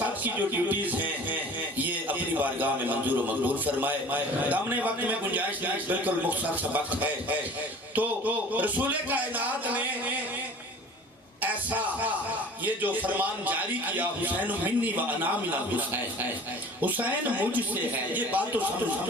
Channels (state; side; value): normal; both; correlation 0.44